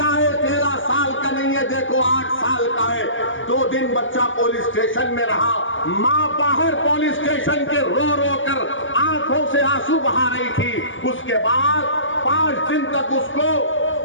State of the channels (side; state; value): right; late; 0.57 ms